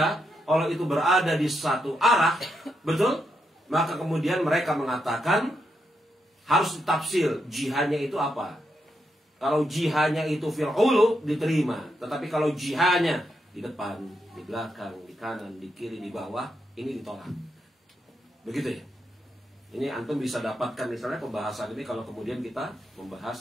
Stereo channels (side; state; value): both; normal; correlation 0.82